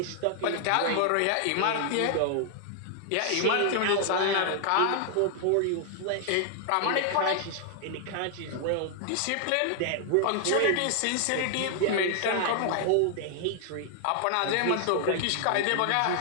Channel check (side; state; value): both; different; correlation 0.00